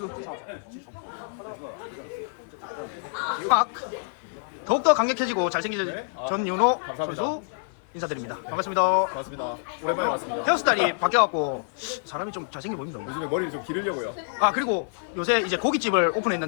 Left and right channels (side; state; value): right; silent; 56 dB below the other